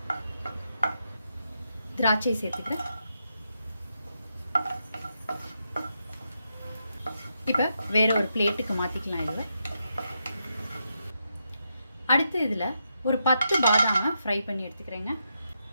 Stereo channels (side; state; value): both; inverted; correlation -0.83